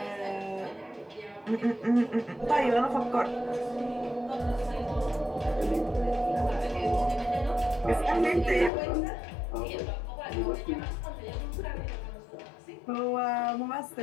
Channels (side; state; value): right; drops out; at 8.7 s